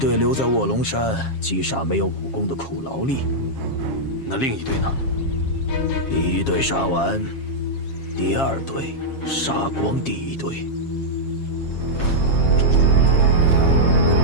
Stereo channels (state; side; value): late; right; 7.4 ms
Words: 留在卧龙山击杀没有武功的苦劳力，那另一队呢？第1队杀完，第2队杀光第1队。